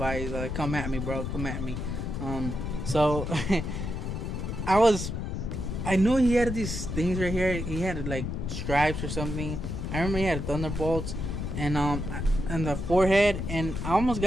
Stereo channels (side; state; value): left; noise; rumble, 4 dB below the sound